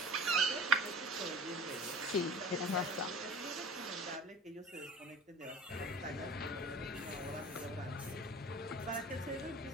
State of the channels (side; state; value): both; normal; correlation 0.41